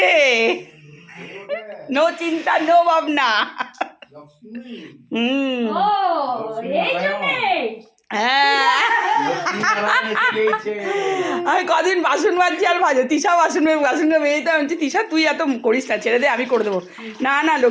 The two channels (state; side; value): identical; both; correlation 1.00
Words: নো চিন্তা, নো ভাবনা। হ্যাঁ, আমি কদিন বাসন মাজছি আর ভাজো, তিশা বাসন মেয়েতে আমি বলছি তিশা তুই এত করিস না, ছেড়ে দে, আমি করে দেবো। না না,